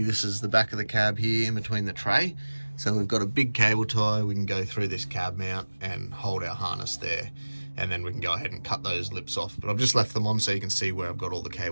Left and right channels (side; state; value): both; inverted; correlation -1.00